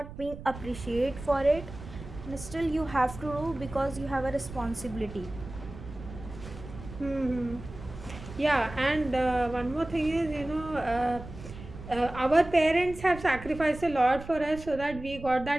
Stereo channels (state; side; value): noise; right; rumble, 13 dB below the sound